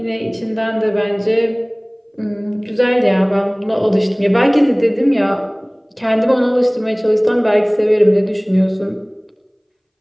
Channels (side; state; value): both; identical; correlation 1.00